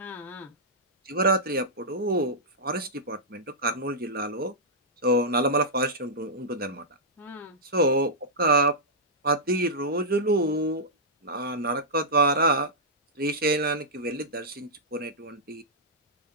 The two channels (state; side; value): normal; both; correlation -0.11